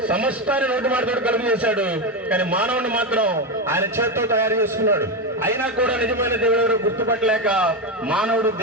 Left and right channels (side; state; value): both; normal; correlation 0.12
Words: సమస్తాన్ని నోటి మాటతో కలుగు చేశాడు, కానీ మానవుని మాత్రం ఆయన చేత్తో తయారు చేసుకున్నాడు. అయినా కూడా నిజమైన దేవుడు ఎవరు గుర్తుపట్టలేక మానవుడు